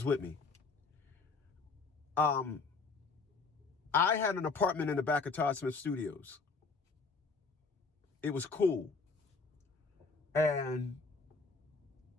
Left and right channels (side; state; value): right; quieter; 4.3 dB